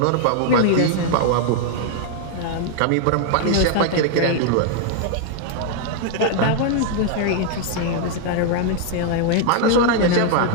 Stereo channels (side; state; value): both; different; correlation 0.00